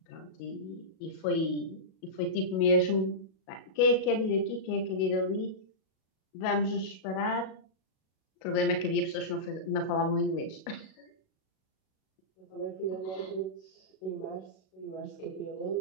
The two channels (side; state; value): right; late; 37 ms